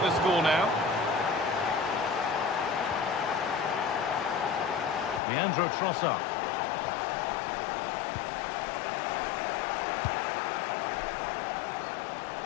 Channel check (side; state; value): right; drops out; at 5.2 s